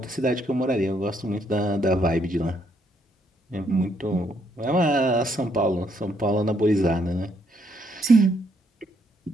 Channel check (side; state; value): both; normal; correlation 0.72